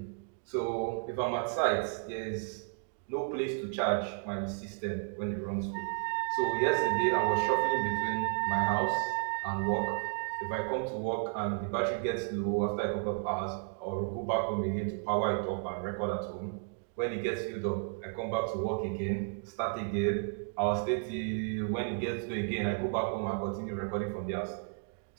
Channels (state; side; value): silent; left; 56 dB below the other